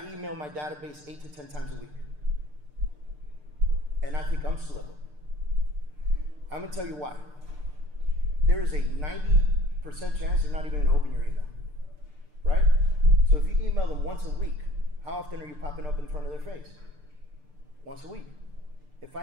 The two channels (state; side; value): late; left; 6.7 ms